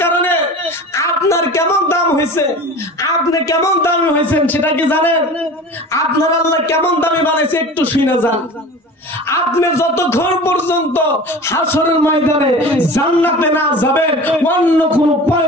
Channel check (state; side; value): normal; both; correlation 0.37